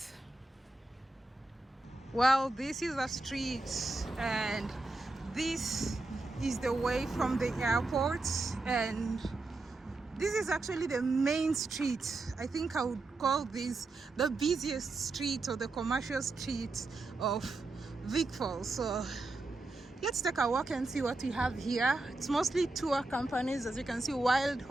Well, this is a street, and this is the way from the airport, and this is actually the main street. I think I would call this the busiest street or the commercial street of Vic Falls. So let's take a walk and see what we have here. It's mostly tour companies, as you can see. Wild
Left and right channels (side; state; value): left; quieter; 3.1 dB